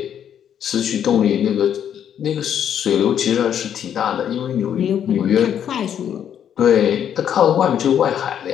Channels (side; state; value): right; quieter; 9.2 dB